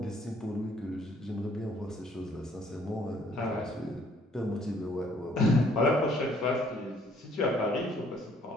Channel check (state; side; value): normal; both; correlation 0.62